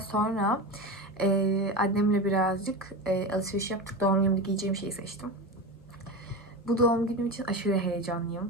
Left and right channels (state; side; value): normal; both; correlation 0.23